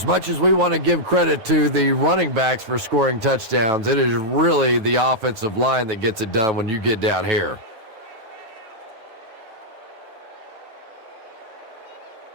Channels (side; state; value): left; late; 9.1 ms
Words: much as we want to give credit to the running backs for scoring touchdowns, it is really the offensive line that gets it done when you get down here.